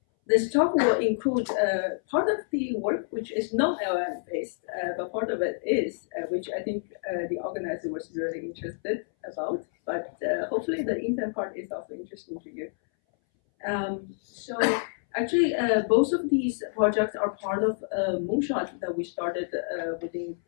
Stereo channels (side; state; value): right; silent; 59 dB below the other